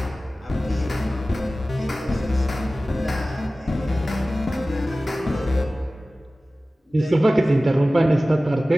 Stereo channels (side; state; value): both; normal; correlation 0.97